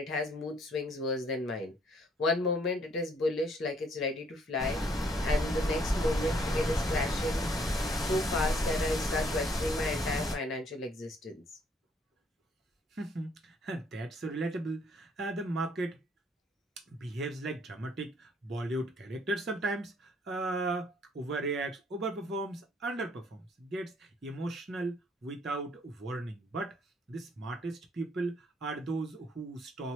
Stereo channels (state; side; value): normal; both; correlation 0.65